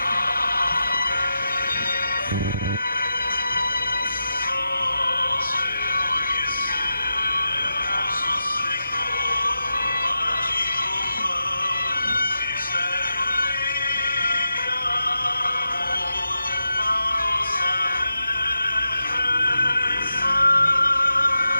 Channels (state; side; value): inverted; both; correlation -0.88